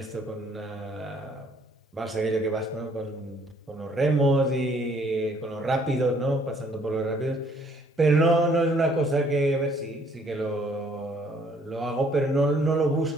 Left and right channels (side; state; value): both; normal; correlation 0.63